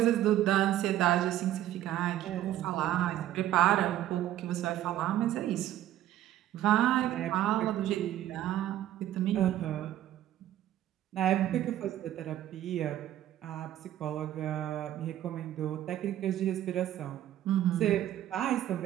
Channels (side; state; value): left; quieter; 12.8 dB